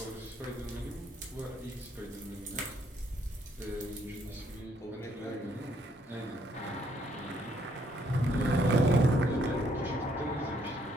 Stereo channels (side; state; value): both; normal; correlation 0.69